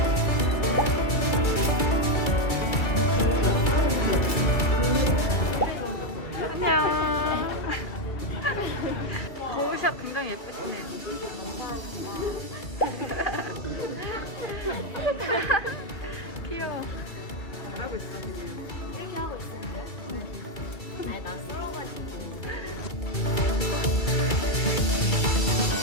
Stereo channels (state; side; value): late; right; 2.3 ms